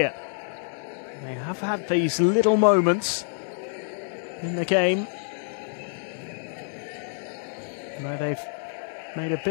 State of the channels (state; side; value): silent; right; 60 dB below the other